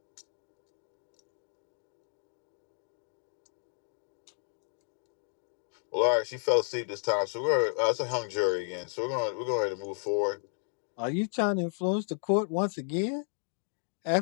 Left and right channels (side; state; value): right; silent; 55 dB below the other